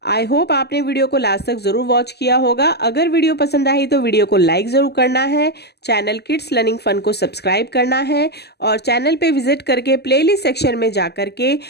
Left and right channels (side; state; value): right; late; 0.48 ms